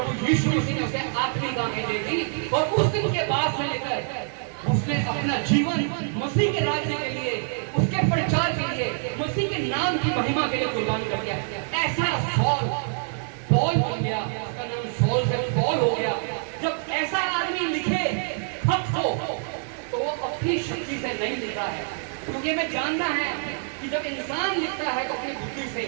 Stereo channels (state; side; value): silent; left; 56 dB below the other